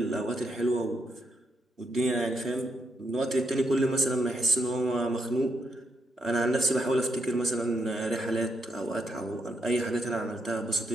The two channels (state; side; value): normal; both; correlation 0.78